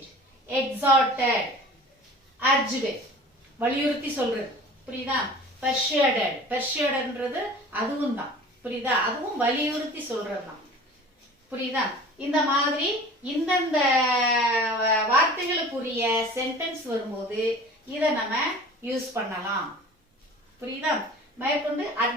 எக்ஸார்டட், அர்ஜ்டு வலியுறுத்தி சொல்றது. புரியுதா? பெர்ஷுவேடட், பெர்ஷுவேடட்ன்றது அதுவும் தான். புரியுதா? அதுவும் வலியுறுத்தி சொல்றது தான். புரியுதா? இந்த மாதிரி இந்தந்த வார்த்தைகளுக்குரிய சென்டென்ஸ் வரும்போது இதை நம்ம யூஸ் பண்ணலாம். புரியுதா? மேற்கொண்டு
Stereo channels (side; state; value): both; normal; correlation 0.42